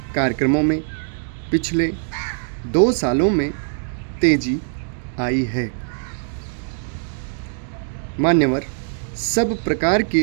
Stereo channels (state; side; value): silent; left; digital silence